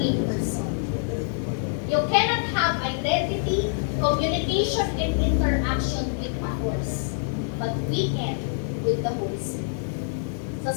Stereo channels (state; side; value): silent; right; digital silence